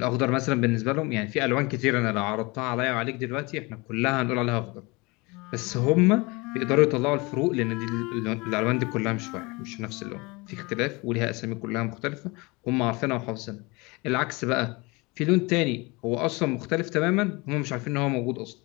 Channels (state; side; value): quieter; right; 25.8 dB